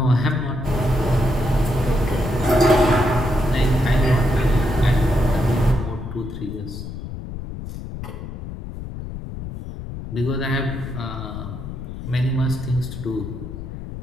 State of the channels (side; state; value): left; noise; rumble, 9 dB below the sound